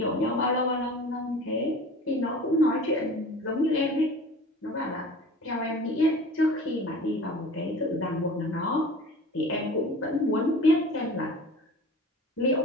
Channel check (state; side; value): normal; both; correlation 0.40